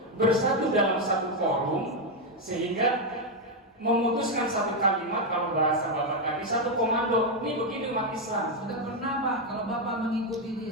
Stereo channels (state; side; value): normal; both; correlation 0.04